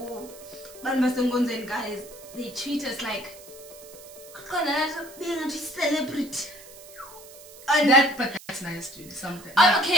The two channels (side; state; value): right; noise; hiss, 19 dB below the sound